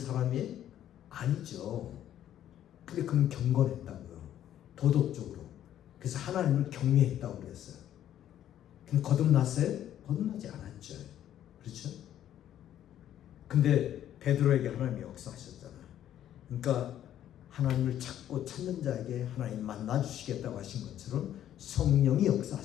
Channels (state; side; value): quieter; right; 11.3 dB